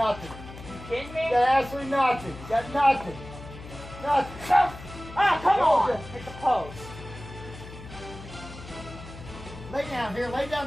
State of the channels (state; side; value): noise; left; hum, 14 dB below the sound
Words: You kidding me? You got absolutely nothing. You got nothing. Nothing. Ah, come on! Nothing. Hit the post. Lay down here. Lay